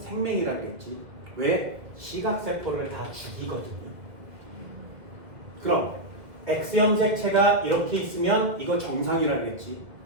그랬지. 왜? 시각세포를 다 죽이거든요. 그럼 X형 색체가 이렇게 있으면 이거 정상이라 그랬지.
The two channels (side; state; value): left; late; 2.0 ms